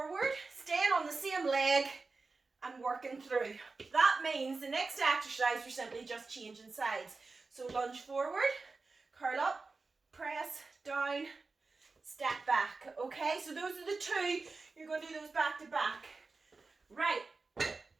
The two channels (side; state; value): left; quieter; 4.0 dB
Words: staying on the same leg, and working through. That means the next exercise we're simply just changing sides. So lunge forward, curl up, press, down, step back. Okay, so those are the two. You're going to do those back to back. Right,